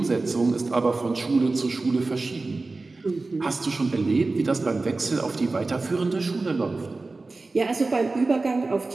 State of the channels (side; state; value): left; quieter; 3.5 dB